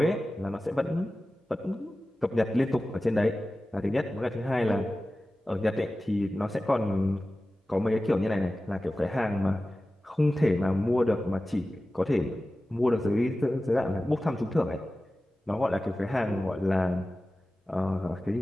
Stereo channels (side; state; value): both; normal; correlation 0.95